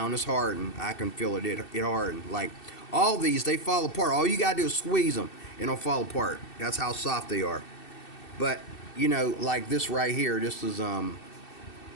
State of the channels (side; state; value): right; late; 2.7 ms